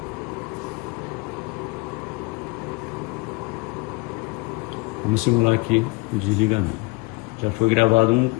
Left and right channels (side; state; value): right; quieter; 24.9 dB